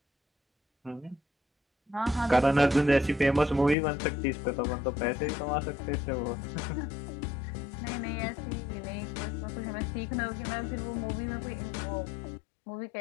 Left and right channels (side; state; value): right; drops out; at 3.8 s